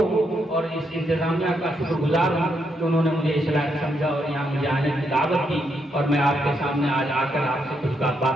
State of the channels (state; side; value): normal; both; correlation 0.78